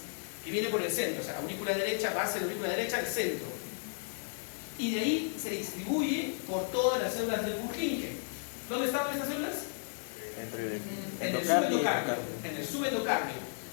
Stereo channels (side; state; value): right; silent; digital silence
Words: que viene por el centro, o sea, aurícula derecha, base de la aurícula derecha, el centro. Y de ahí se distribuye por todas las células del Purkinje. ¿Dónde estaban estas células? En el subendocardio.